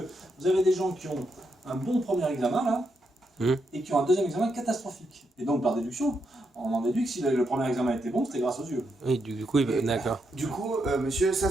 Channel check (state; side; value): normal; both; correlation 0.81